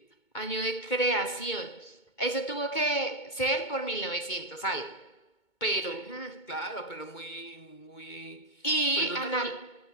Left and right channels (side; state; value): right; late; 2.2 ms